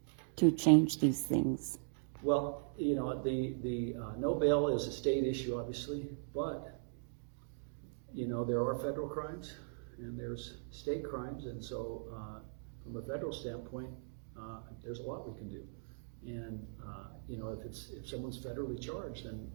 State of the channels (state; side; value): silent; left; digital silence